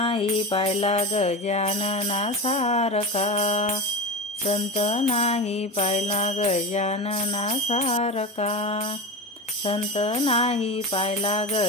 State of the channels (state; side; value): normal; both; correlation 0.23